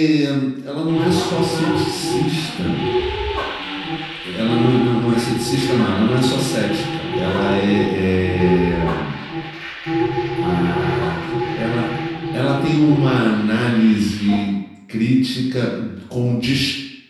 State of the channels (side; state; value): both; identical; correlation 1.00